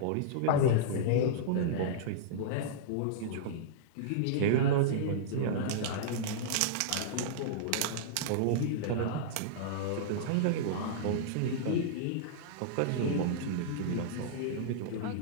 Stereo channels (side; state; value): both; different; correlation -0.02